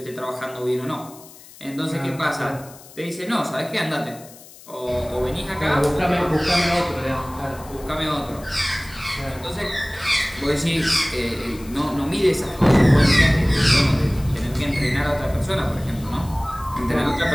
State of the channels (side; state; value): left; noise; hiss, 20 dB below the sound